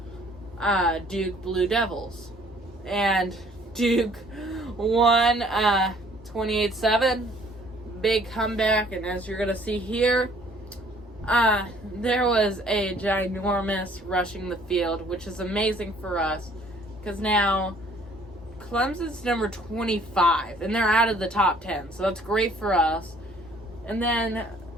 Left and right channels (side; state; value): both; normal; correlation 0.58